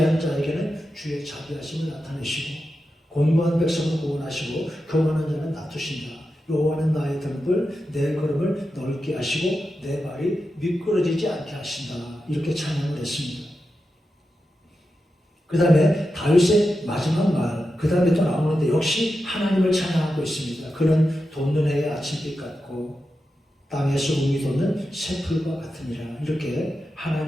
자에게는 주의 자비하심을 나타내시고 곤고한 백성을 구원하시고 교만한 자는 낮추신다. 여호와는 나의 등불, 내 걸음을 넓게 하시고 내 발이 미끄러지지 않게 하신다. 이렇게 찬양을 했습니다. 그 다음에 다윗의 마지막 말, 그 다음에 또 나오는데 역시 하나님을 찬양하고 있습니다. 그는 돋는 해의 아침빛 같고 땅에서 우미 돋는 새풀과 같으니라. 이렇게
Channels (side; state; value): both; normal; correlation 0.90